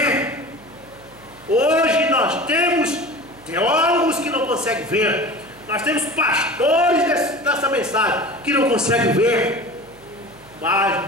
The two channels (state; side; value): noise; right; hum, 26 dB below the sound